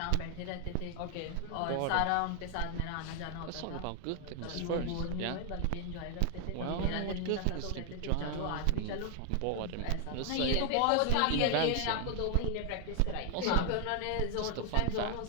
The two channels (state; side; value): different; both; correlation 0.00